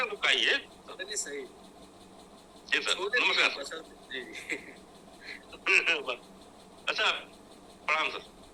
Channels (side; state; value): both; identical; correlation 1.00